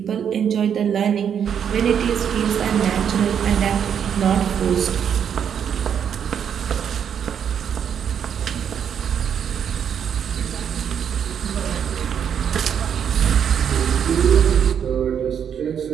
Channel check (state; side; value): quieter; left; 8.2 dB